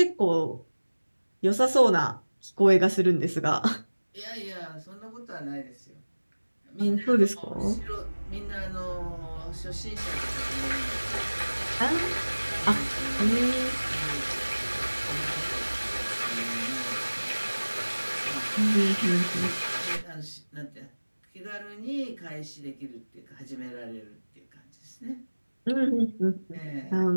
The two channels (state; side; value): inverted; both; correlation -1.00